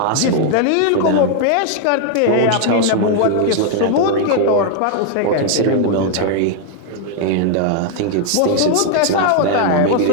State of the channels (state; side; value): different; both; correlation 0.00